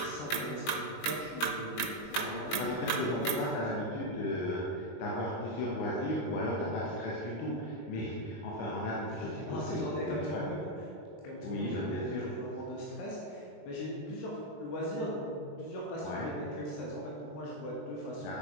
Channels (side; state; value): right; late; 19 ms